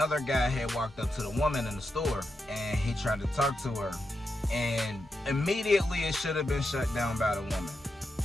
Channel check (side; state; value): both; normal; correlation 0.87